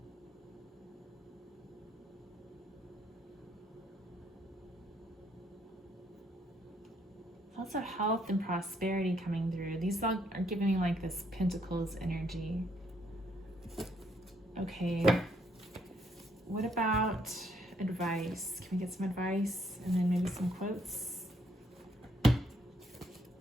Lots of health and prosperity coming through. These all are giving me like this Pentacles energy. Okay. What about advice? Can we get some advice and then maybe some quotes? I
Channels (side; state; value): both; normal; correlation 0.71